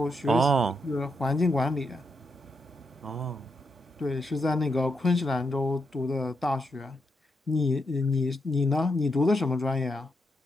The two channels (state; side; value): normal; both; correlation 0.82